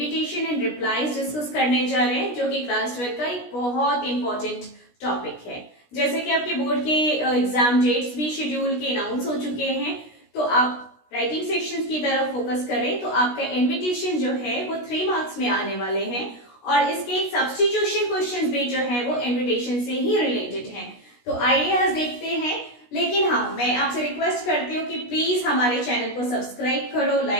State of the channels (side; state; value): right; late; 16 ms